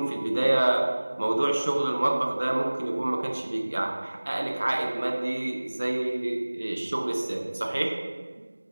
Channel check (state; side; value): inverted; both; correlation -1.00